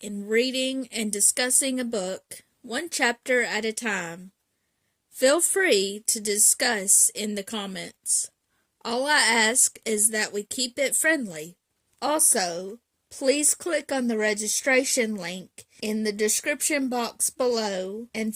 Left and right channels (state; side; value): identical; both; correlation 1.00